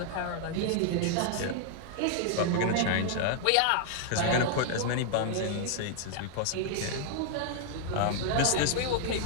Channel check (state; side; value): different; both; correlation 0.00